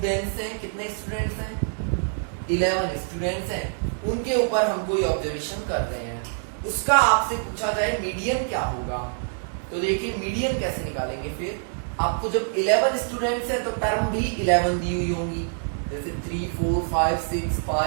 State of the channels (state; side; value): silent; left; digital silence